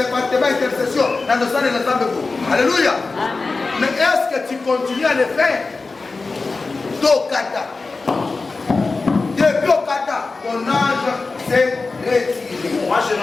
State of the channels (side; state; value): right; quieter; 3.9 dB